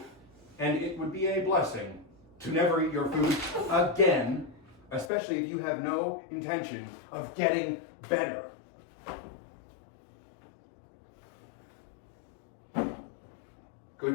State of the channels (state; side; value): drops out; right; at 5.1 s